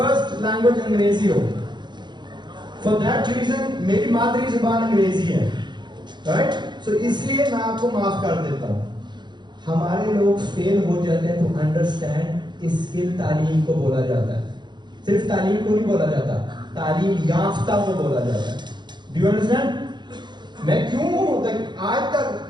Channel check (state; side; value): late; left; 0.22 ms